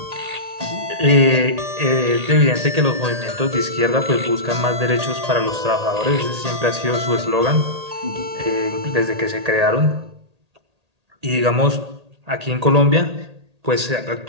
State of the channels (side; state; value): left; late; 1.8 ms